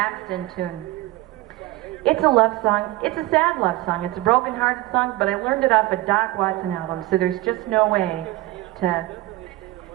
tune. It's a love song. It's a sad love song. It's a broken-hearted song, but I learned it off a Doc Watson album, so there's just no way to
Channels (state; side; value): quieter; left; 18.0 dB